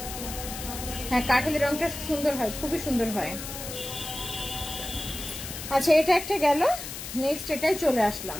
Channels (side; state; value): left; noise; hiss, 9 dB below the sound